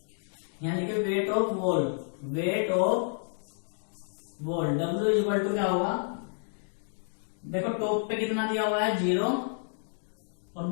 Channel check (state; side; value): silent; right; digital silence